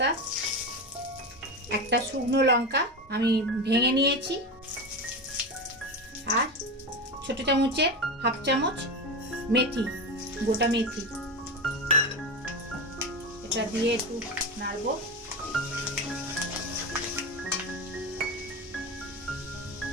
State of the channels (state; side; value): normal; both; correlation 0.20